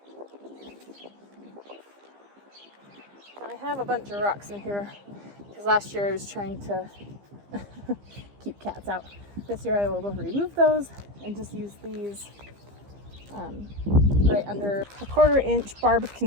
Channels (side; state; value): left; late; 15 ms